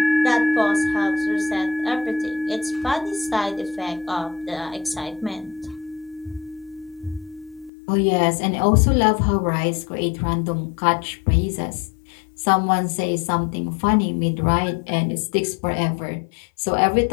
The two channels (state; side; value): drops out; right; at 7.7 s